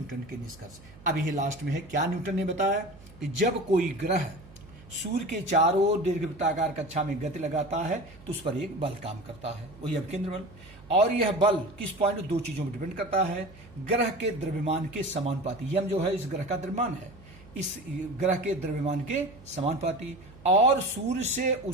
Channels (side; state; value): right; noise; hum, 21 dB below the sound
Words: के निष्कर्ष। अब यही लास्ट में है, क्या न्यूटन ने बताया कि जब कोई ग्रह सूर्य के चारों ओर दीर्घवृत्ताकार कक्षा में गति लगाता है तो उस पर एक बल काम करता है, वही अपकेंद्र बल। और यह बल किस पॉइंट, दो चीजों पर डिपेंड करता है। ग्रह के द्रव्यमान के समानुपाती, यम जो है इस ग्रह का द्रव्यमान है, इस ग्रह के द्रव्यमान के समानुपाती, और सूर्य से